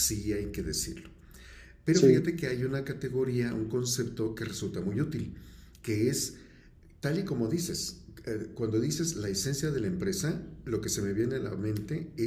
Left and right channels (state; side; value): identical; both; correlation 1.00